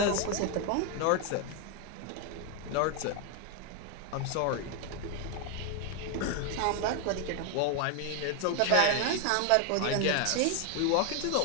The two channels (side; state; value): both; different; correlation 0.01